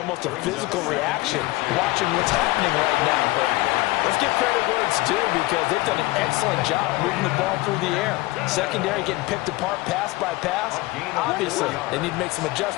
a physical reaction watching what's happening right now. But let's give credit where it's due because they've done an excellent job moving the ball through the air. Secondary getting picked apart pass by pass. Obviously, they need to make some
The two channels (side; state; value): right; quieter; 20.6 dB